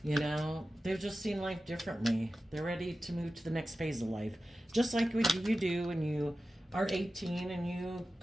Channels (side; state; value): both; normal; correlation 0.94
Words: they've just seen life differently. They're ready to move to the next phase of life. Just like what you do when you are 18 and you